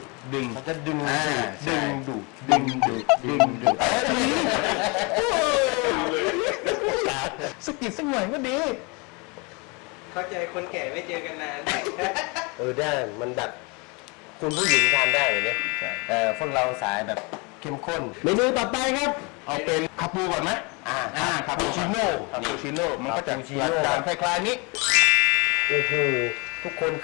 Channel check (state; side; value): quieter; right; 29.8 dB